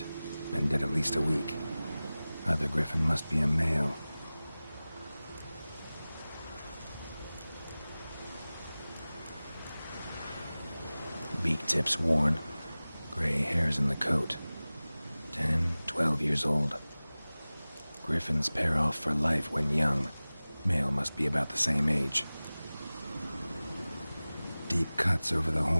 Been dead at least a week. Other griffin must be a male. Beak tips worn. Gray hairs in the coat. 10, 12 years old. Griffins pair off for life when young. Male must be about the same age. Deep cuts over the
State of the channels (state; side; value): inverted; both; correlation -0.98